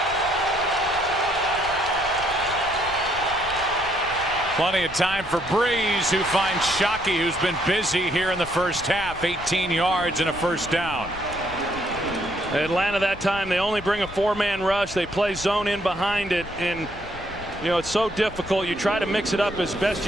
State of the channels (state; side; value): noise; left; rumble, 15 dB below the sound